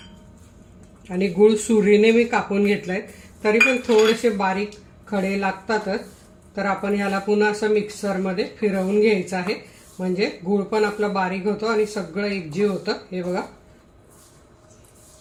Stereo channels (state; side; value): identical; both; correlation 1.00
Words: आणि गूळ सुरीने मी कापून घेतलाय, तरी पण थोडेसे बारीक खडे लागतातच. तर आपण ह्याला पुन्हा असं मिक्सरमध्ये फिरवून घ्यायचं आहे, म्हणजे गूळ पण आपला बारीक होतो आणि सगळं एकजीव होतं. हे बघा.